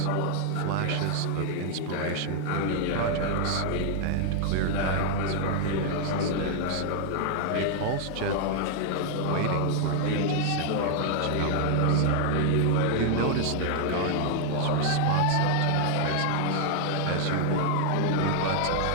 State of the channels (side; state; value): both; different; correlation 0.00